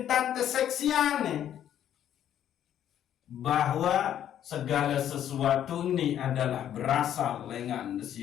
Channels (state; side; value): quieter; right; 10.5 dB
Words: keseksian bahwa segala sesuatu ini adalah berasal dengan